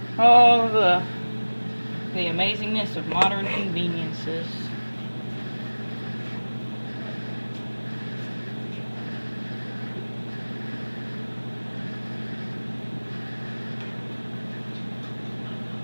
Oh, the amazingness of modern conveniences.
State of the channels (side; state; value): both; inverted; correlation -1.00